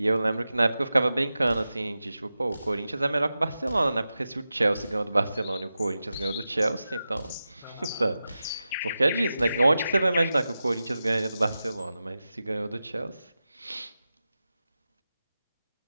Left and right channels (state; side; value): inverted; both; correlation -0.93